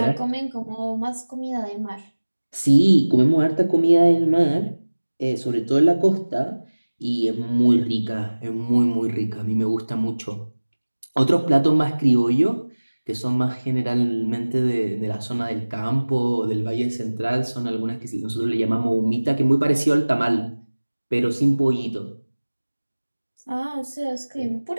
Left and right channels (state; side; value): inverted; both; correlation -1.00